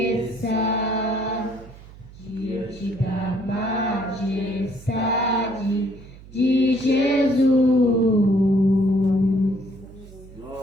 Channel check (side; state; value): right; noise; hum, 19 dB below the sound